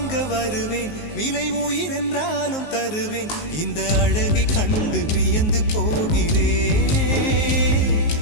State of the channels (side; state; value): right; late; 19 ms